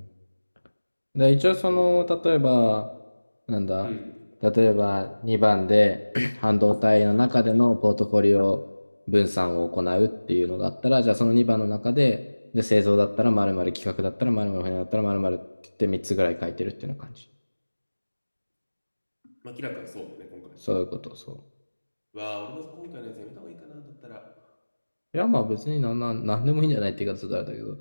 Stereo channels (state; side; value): inverted; both; correlation -1.00